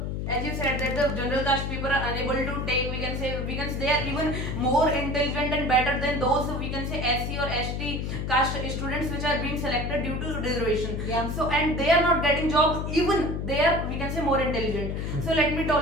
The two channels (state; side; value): noise; left; hum, 3 dB below the sound